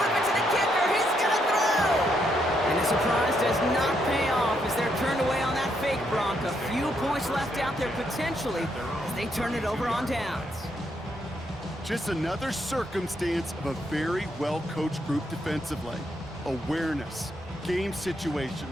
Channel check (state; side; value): normal; both; correlation 0.76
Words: it to the potentially, as they turn it over on downs. Just another circumstance of a very well-coached group defensively. Awareness, game